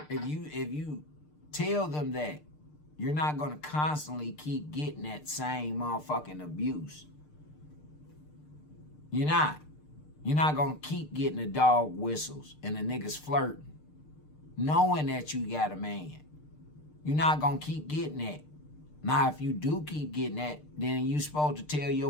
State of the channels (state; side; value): late; right; 6.6 ms